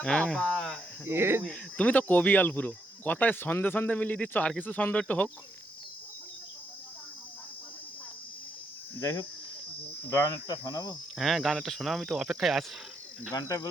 হ্যাঁ। বাবা, তুমি তো কবিয়াল পুরো, কথায় সন্ধে সন্ধে মিলিয়ে দিচ্ছ, আর কিছু ছন্দ একটু হোক। যাই হোক, গান একটা শোনাবো। হ্যাঁ গান একটা শোনা, আমি তো অপেক্ষায় আছি। গানটা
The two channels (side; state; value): both; normal; correlation 0.78